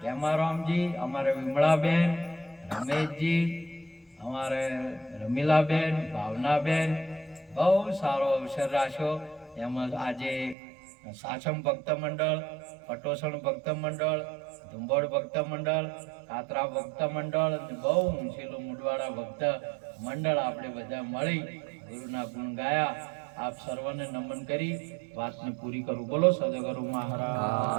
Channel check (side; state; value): left; drops out; at 10.6 s